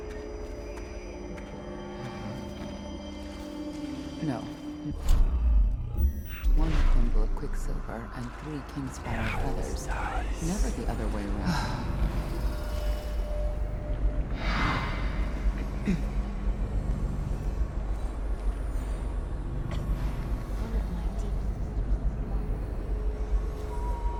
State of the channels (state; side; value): identical; both; correlation 1.00